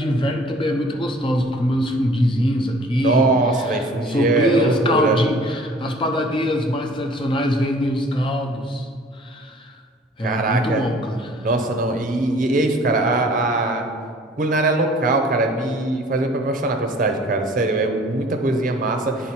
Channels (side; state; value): both; normal; correlation 0.51